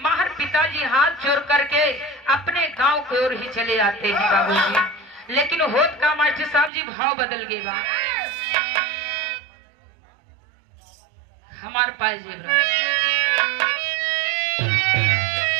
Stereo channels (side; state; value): left; drops out; at 6.7 s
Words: माहर पिताजी हाथ जोड़ करके अपने गांव की ओर ही चले आते हैं बाबूजी। लेकिन होत का मास्टर साहब जी भाव बदल गए बा हमारे पास